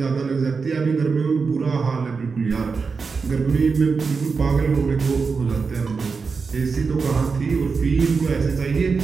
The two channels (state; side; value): quieter; left; 4.9 dB